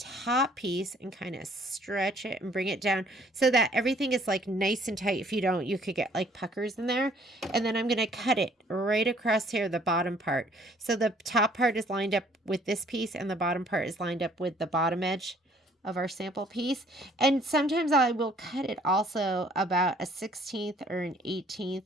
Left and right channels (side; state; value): both; normal; correlation 0.60